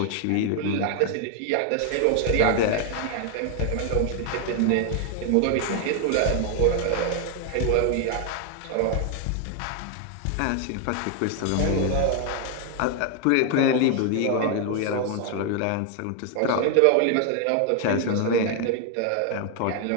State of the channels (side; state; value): both; different; correlation 0.00